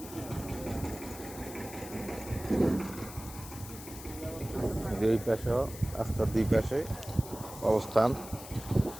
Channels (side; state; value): left; noise; hiss, 14 dB below the sound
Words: দুই পাশে রাস্তার দুই পাশে অবস্থান।